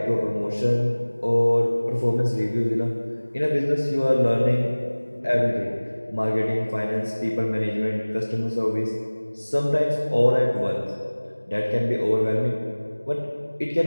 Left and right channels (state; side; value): inverted; both; correlation -1.00